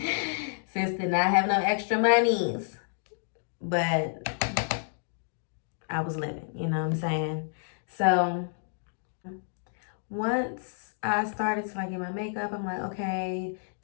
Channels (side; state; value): right; silent; digital silence